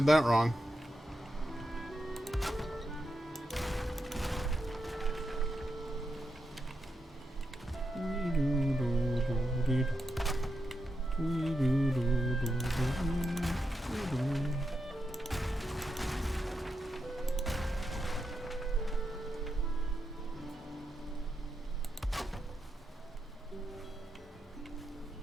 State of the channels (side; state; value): both; normal; correlation 0.86